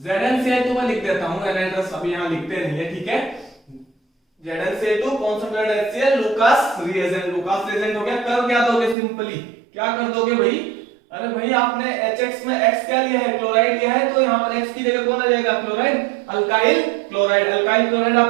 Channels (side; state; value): left; drops out; at 9.0 s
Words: तो मैं लिख देता हूं, एनहाइड्रस अभी यहां लिखते नहीं है, ठीक है। ZnCl2 concentrated HCl Lucas reagent. Lucas reagent हो गया। कर क्या दोगे? सिंपली क्या कर दोगे भाई? अरे भाई आपने HX में X क्या लिया है? क्लोराइड लिया है, तो यहां पर X की जगह कौन आ जाएगा? Chloride, alkyl chloride. Alkyl chloride